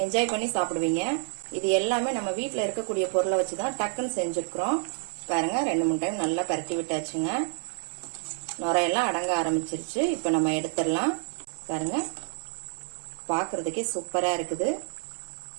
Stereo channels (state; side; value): silent; left; 56 dB below the other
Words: என்ஜாய் பண்ணி சாப்பிடுவீங்க. இது எல்லாமே நம்ம வீட்டில் இருக்கக்கூடிய பொருளை வச்சுதான் டக்குன்னு செஞ்சிருக்கிறோம். பாருங்க, 2-3 டைம் நல்லா பரட்டி விட்டாச்சுங்க. நுரையெல்லாம் அடங்க ஆரம்பிச்சிருச்சு. இப்ப நம்ம எடுத்துடலாம். பாருங்க, பாக்குறதுக்கே சூப்பரா இருக்குது.